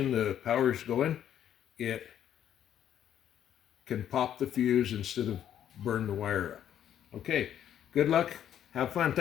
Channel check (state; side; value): quieter; right; 10.2 dB